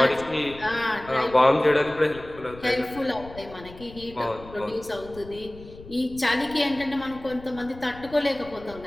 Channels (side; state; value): left; noise; rumble, 18 dB below the sound